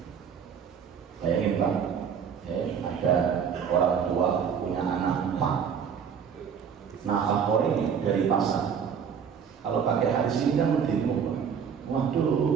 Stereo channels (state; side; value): quieter; left; 7.2 dB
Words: Bayangin Pak, ada orang tua punya anak 4, nafkah ini dari pasar. Kalau pakai hadis ini kan mendemo,